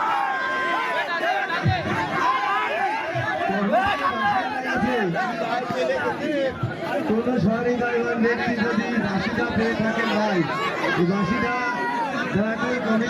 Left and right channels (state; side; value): identical; both; correlation 1.00